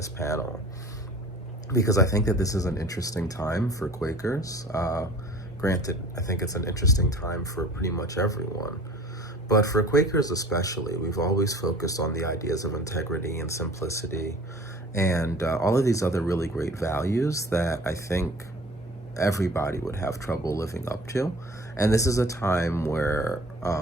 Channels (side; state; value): both; normal; correlation 0.46